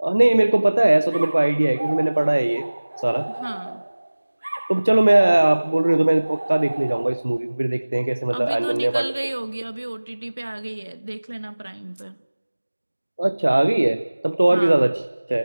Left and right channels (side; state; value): both; inverted; correlation -1.00